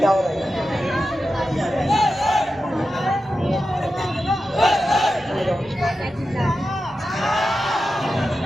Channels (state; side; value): normal; both; correlation 0.91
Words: हो रहा है?